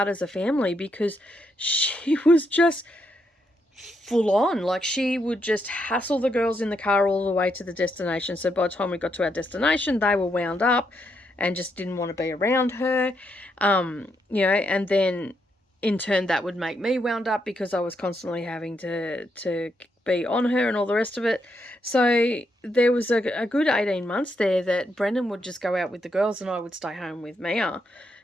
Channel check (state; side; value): normal; both; correlation 0.79